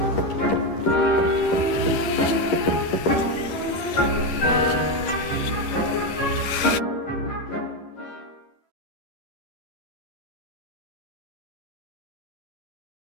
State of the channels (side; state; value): right; late; 11 ms